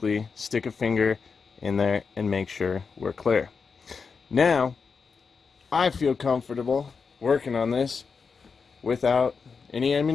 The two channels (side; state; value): right; quieter; 5.3 dB